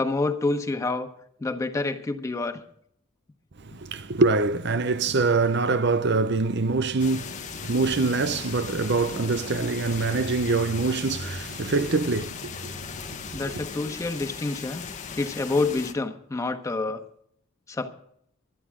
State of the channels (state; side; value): normal; both; correlation 0.30